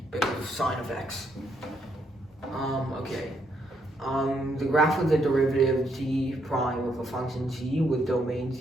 because of sine of X. Okay. The graph of the derivative g prime of a function g with domain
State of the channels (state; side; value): normal; both; correlation 0.75